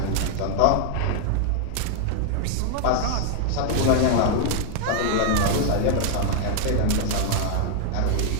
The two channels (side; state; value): both; different; correlation 0.00